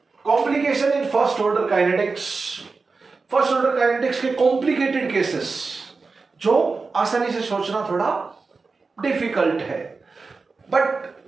complication in first order kinetics. First order kinetics के कॉम्प्लिकेटेड केसेस जो आसानी से सोचना थोड़ा डिफिकल्ट है, but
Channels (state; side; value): quieter; left; 4.2 dB